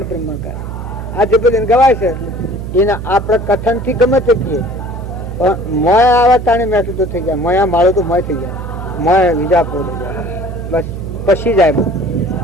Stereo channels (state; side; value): noise; right; hum, 8 dB below the sound